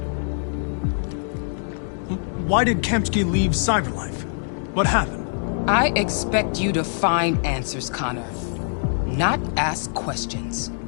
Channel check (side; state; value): right; silent; digital silence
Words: Why did Kamsky leave CyberLife? What happened? I expect you to find answers, Connor. Not ask questions.